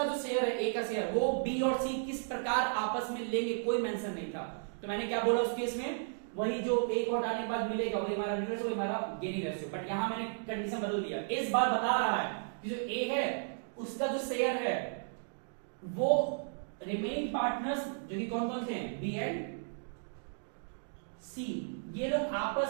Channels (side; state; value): left; silent; digital silence